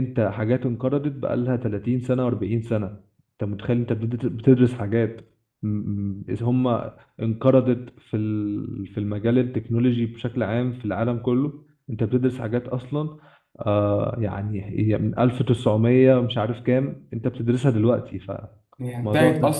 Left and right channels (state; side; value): identical; both; correlation 1.00